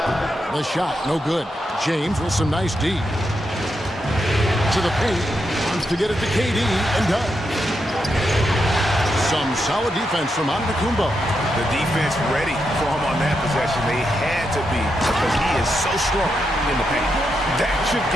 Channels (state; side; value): normal; both; correlation 0.84